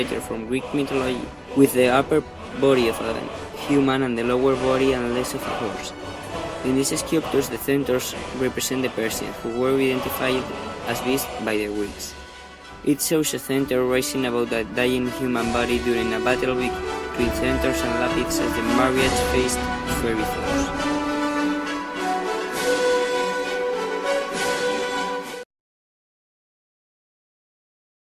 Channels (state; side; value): identical; both; correlation 1.00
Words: from Greek mythology with the upper body of a human and the lower body and legs of a horse. In these sculptures, the centaurs represent the Persians, who were identified as beasts by the Greeks. It shows a centaur rising above a dying human body during a battle between centaurs and Lapids as the marriage faced fairy foes.